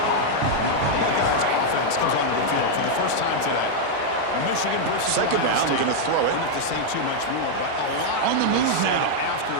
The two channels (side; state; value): both; different; correlation -0.01